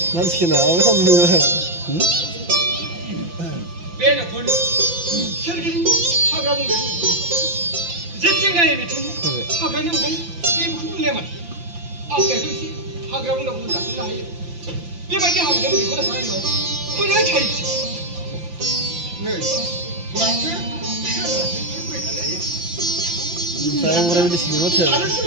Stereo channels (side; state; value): left; late; 5.8 ms